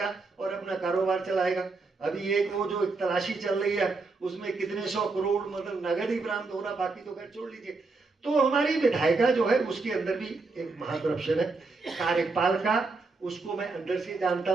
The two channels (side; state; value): left; quieter; 3.8 dB